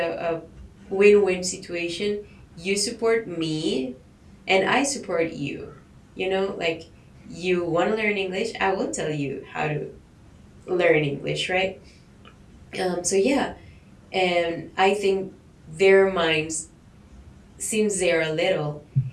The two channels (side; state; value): both; identical; correlation 1.00